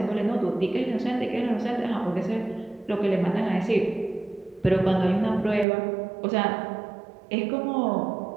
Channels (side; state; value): left; drops out; at 5.7 s